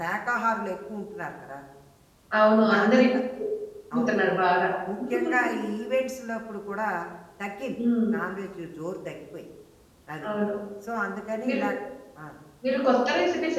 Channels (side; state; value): both; identical; correlation 1.00